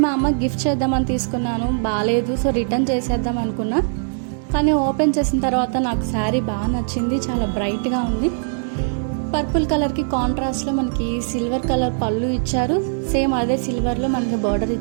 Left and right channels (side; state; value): left; silent; digital silence